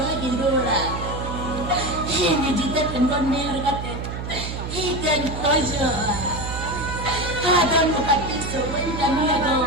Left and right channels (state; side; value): noise; right; hum, 6 dB below the sound